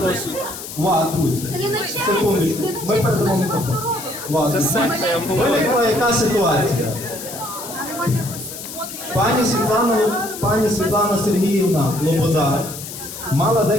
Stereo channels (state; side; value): noise; left; hiss, 11 dB below the sound